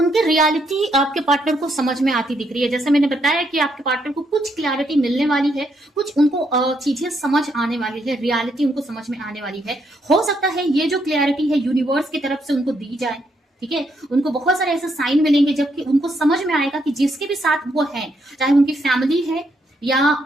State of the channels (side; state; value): both; normal; correlation 0.76